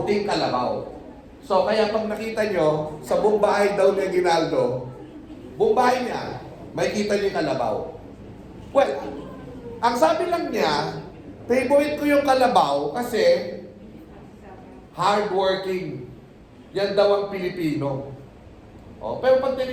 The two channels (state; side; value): identical; both; correlation 1.00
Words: kalabaw. So, kaya pag nakita nyo, sa buong bahay daw ni Aguinaldo, buong bahay niya, may kita niyo yung kalabaw. Well, ang sabi lang niya, favorite ko yung kalabaw kasi hardworking. Yan daw ang Pilipino. Oh, pero pag